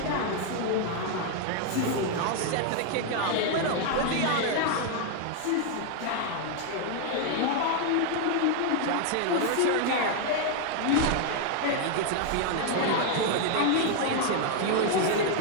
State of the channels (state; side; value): different; both; correlation 0.00